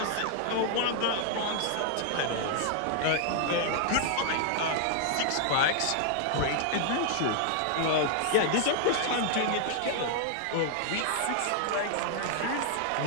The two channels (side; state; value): both; different; correlation 0.00